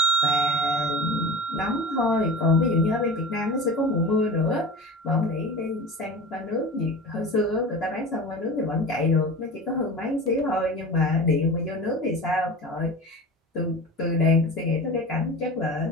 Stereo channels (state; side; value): normal; both; correlation 0.33